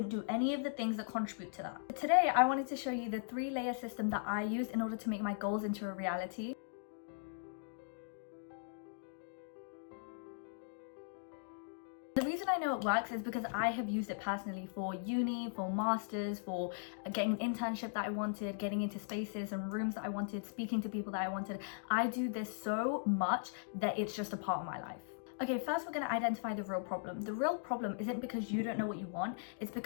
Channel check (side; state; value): right; silent; digital silence